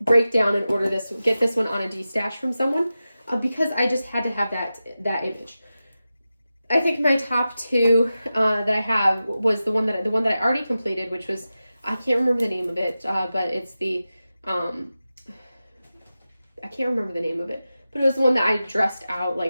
break down and order this, get this one on a D-Stash from someone because I just had to have that image. I think my top 2 that I have was the one that I already completed, which was, I can't remember the name of it, but it's the I can't remember the name of it, but it was the one that I dressed out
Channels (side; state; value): both; inverted; correlation -0.93